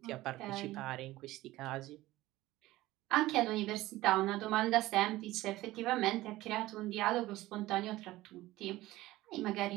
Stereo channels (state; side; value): quieter; left; 17.3 dB